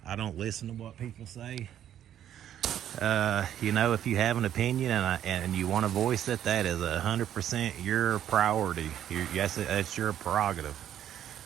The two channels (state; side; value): quieter; left; 10.7 dB